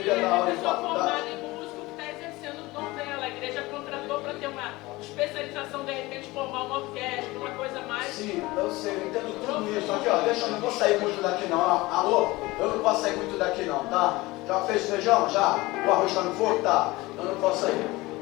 E dar é aula uma em pessoa formada faculdade. em músico que está exercendo o dom dela. A igreja contratou para ter uma especialização, de repente, formar uma orquestra, uma coisa mais. Sim, eu sei, eu entendo tudo isso. Aqui, ó, deixa, eu não vou sair muito daqui não. Alô? Eu não posso sair muito daqui não, tá? Já fez feijão? Já? O arroz está no fogo? Tá. Eu não posso sair.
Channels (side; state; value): right; quieter; 20.7 dB